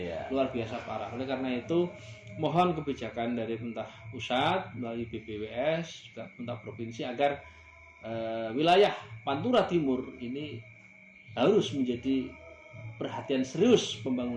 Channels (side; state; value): both; identical; correlation 1.00